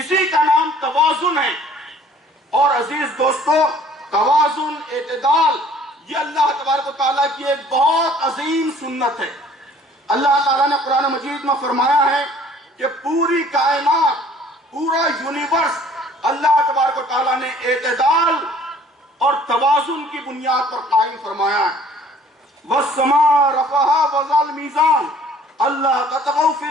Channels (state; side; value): normal; both; correlation 0.55